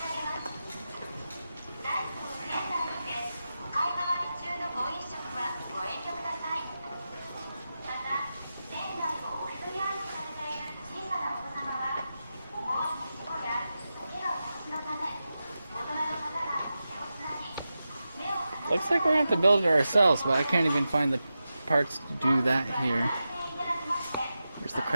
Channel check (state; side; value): inverted; both; correlation -0.91